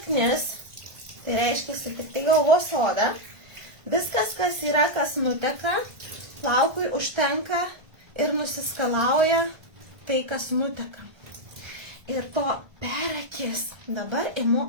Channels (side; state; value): left; late; 1.5 ms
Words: tai reiškia tik tai galvos odą, viskas, kas yra, kas nuteka, plaukui užtenka ir nusiskalauja tai, kas nuteka. Ir to per akis. Dabar imu